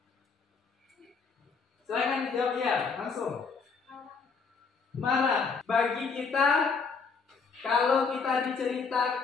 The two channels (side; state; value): right; quieter; 5.1 dB